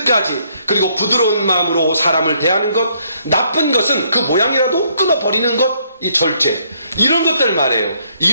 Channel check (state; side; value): inverted; both; correlation -0.69